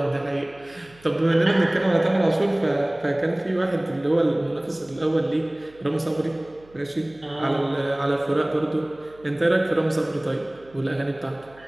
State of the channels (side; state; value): right; noise; hum, 27 dB below the sound